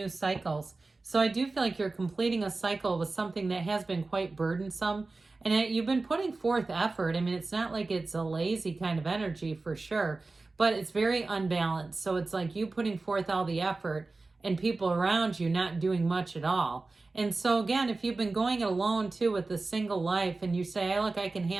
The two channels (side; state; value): left; quieter; 3.5 dB